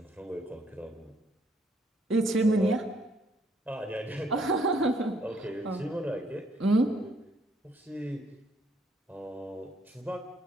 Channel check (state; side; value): normal; both; correlation 0.67